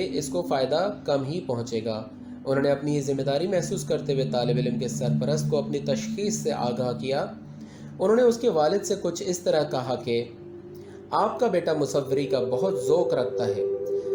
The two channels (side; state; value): both; identical; correlation 1.00